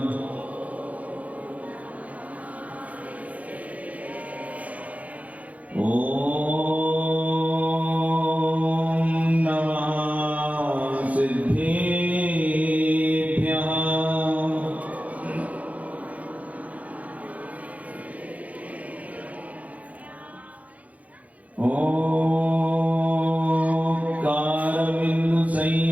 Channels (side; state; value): left; late; 0.069 ms